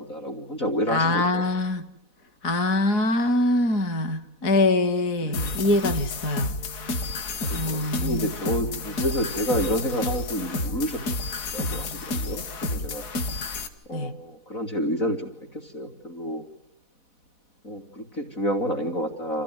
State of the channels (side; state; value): right; late; 4.1 ms